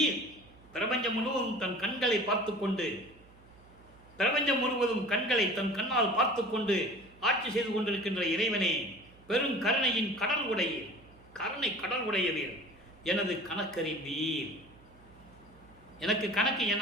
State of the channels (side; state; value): right; noise; hum, 26 dB below the sound